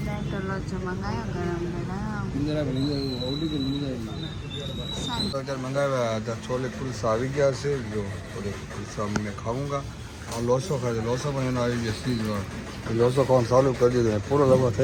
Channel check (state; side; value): identical; both; correlation 1.00